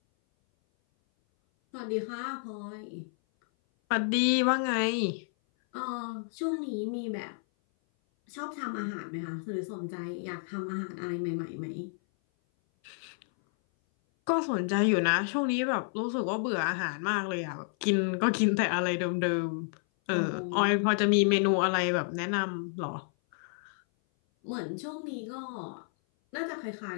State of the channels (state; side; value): silent; right; 57 dB below the other